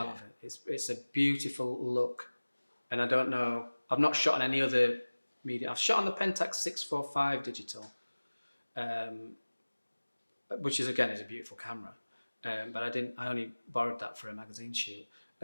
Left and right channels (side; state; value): both; inverted; correlation -1.00